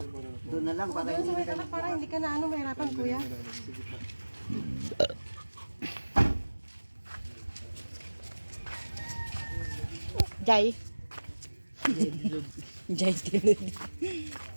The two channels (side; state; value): both; inverted; correlation -1.00